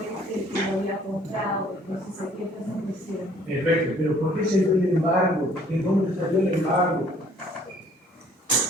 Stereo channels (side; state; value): both; normal; correlation 0.59